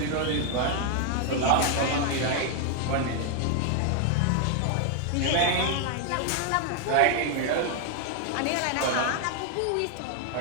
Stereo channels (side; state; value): both; different; correlation 0.00